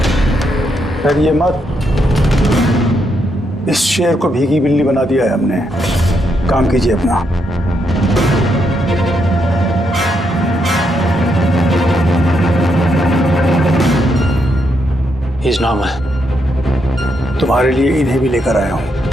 डरिए मत, इस शेर को भीगी बिल्ली बना दिया है हमने। काम कीजिए अपना। He's not my... तुम्हारे लिए इन्हें भी लेकर आया हूं।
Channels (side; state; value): both; normal; correlation 0.79